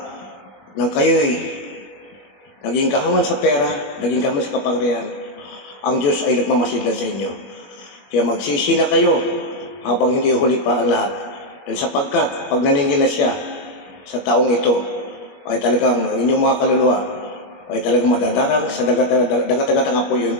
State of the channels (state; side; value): late; right; 21 ms